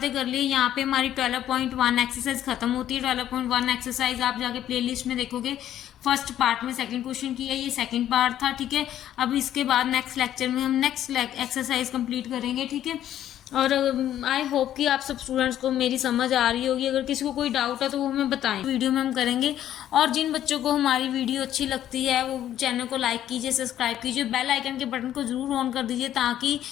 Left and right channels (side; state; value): right; quieter; 11.5 dB